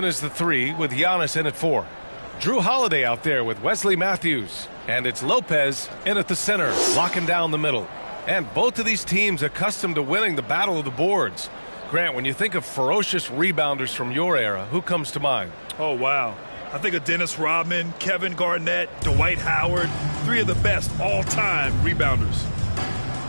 is the 3 with Giannis in at 4. Drew Holiday out there with Wesley Matthews. And it's Lopez in at the center, locking down the middle. And both of these teams accustomed to winning the battle of the boards. Grant, when you think of ferocious rebounders from your era, who comes to mind? Oh, wow. I think of Dennis Rodman, Kevin Garnett, Dwight Howard, 3 of the best all-time rebounders.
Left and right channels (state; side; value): inverted; both; correlation -1.00